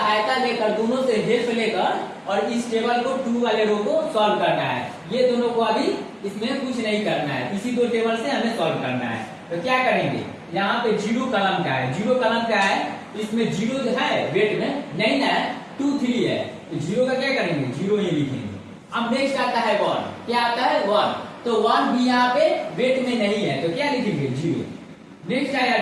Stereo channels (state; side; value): identical; both; correlation 1.00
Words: लेकर, दोनों से हेल्प लेकर और इस टेबल को 2 वाले रो को सॉल्व करना है। ये दोनों को अभी इसमें कुछ नहीं करना है, इसी 2 टेबल से हमें सॉल्व करना है। तो क्या करेंगे? यहाँ पे 0 कलम का है, 0 कलम का है, इसमें 0 जो है वेट में नहीं ना, 2 3 है, तो 0 का क्या करेंगे? 0 ही लिखेंगे। अब नेक्स्ट आता है 1। क्या आता है? 1। तो 1 भी यहाँ पे वेट में नहीं है, तो क्या लिखेंगे? 0। नेक्स्ट आया